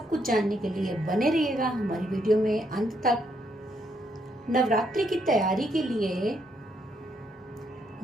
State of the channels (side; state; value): both; normal; correlation 0.74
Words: कुछ जानने के लिए बने रहिएगा हमारी वीडियो में अंत तक। नवरात्रि की तैयारी के लिए